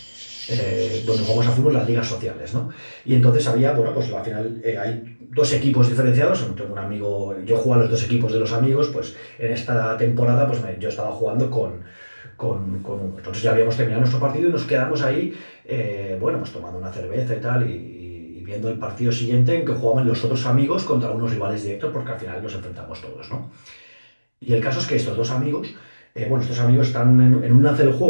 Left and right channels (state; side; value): inverted; both; correlation -1.00